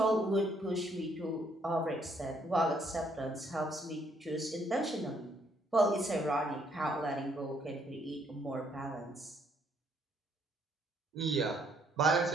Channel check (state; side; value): normal; both; correlation 0.69